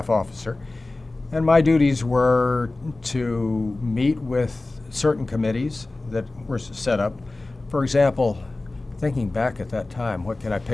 officer, And my duties were to meet with certain committees that were set up. For example, thinking back at that time, what can I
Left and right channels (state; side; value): quieter; right; 3.1 dB